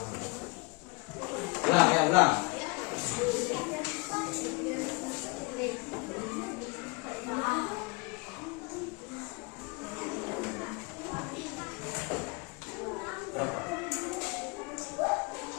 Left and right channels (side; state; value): right; quieter; 29.2 dB